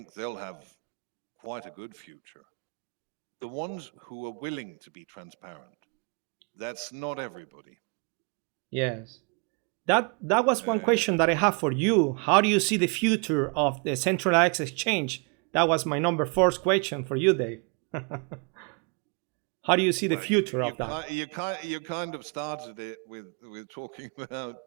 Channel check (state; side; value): quieter; left; 36.3 dB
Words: they'll have quite a good future. The ones who are willing to be transparent, that's not everybody. Yes. That was one question that I have for you. How do you see the future of the centralized exchange? That was my number fourth question for you, Dave. How do you see the future of that? You kind of started it with talking about